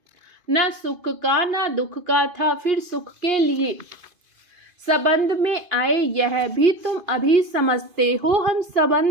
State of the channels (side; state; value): left; late; 2.5 ms